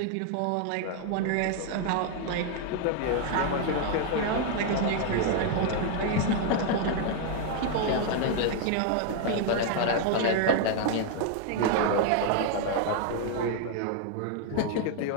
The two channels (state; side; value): different; both; correlation 0.00